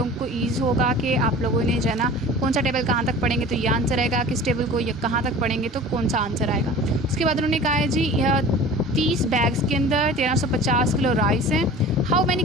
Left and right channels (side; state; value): both; normal; correlation 0.41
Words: को ईज़ होगा कि आप लोगों ने जो है ना कौन सा टेबल कहाँ तक पढ़ेंगे तो ये आंसर आएगा, किस टेबल को ये कहाँ तक पढ़ेंगे तो कौन सा आंसर आएगा। उसके बाद उन्होंने कहा है जी 30 बैग्स के अंदर 1350 किलो राइस हैं। How many